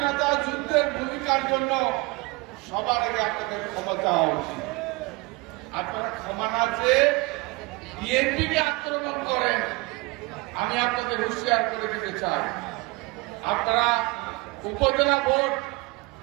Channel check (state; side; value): quieter; left; 24.9 dB